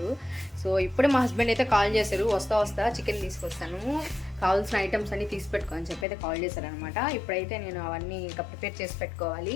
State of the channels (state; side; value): drops out; right; at 6.1 s